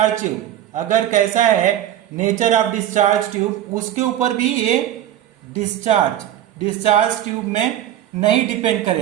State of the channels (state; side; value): quieter; left; 11.8 dB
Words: ट्यूब, अगर कैसा है नेचर ऑफ डिस्चार्ज ट्यूब, उसके ऊपर भी ये डिस्चार्ज ट्यूब में नहीं डिपेंड